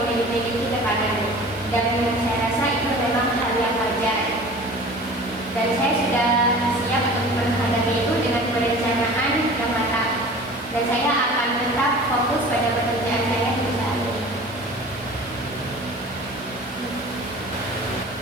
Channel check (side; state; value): both; normal; correlation 0.42